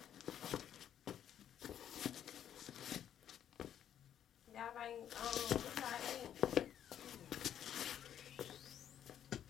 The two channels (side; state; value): right; quieter; 9.9 dB